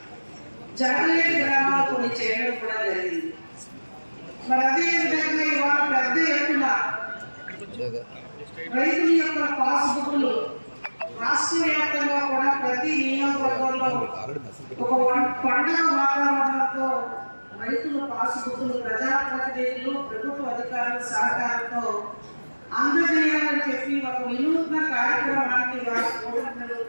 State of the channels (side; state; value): both; inverted; correlation -1.00